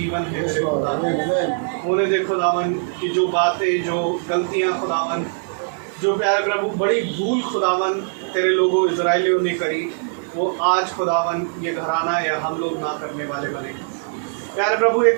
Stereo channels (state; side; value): silent; left; digital silence